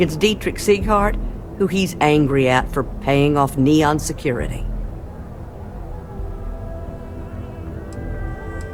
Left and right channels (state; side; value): identical; both; correlation 1.00